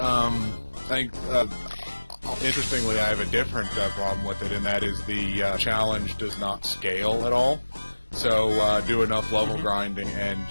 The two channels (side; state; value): both; inverted; correlation -1.00